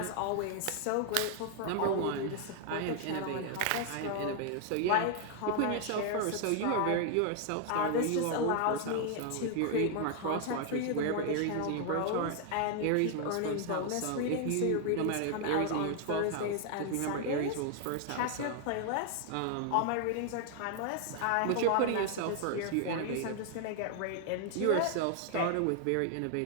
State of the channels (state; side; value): different; both; correlation 0.00